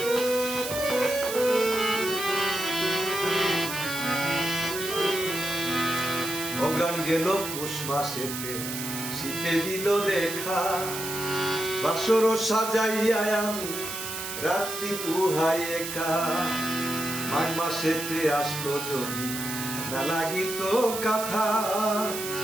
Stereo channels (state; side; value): noise; right; hiss, 6 dB below the sound